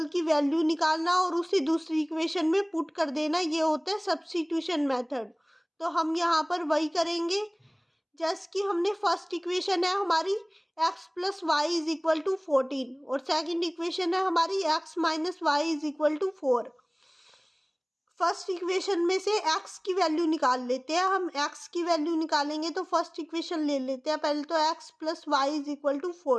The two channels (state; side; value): identical; both; correlation 1.00